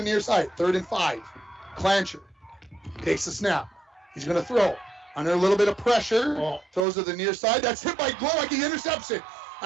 near side, 3rd and 5. Clancher takes the snap. He's going to throw under a little bit of pressure. Throws to the near side. That's hit by Glowacke. He intercepts it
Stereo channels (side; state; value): left; drops out; at 6.9 s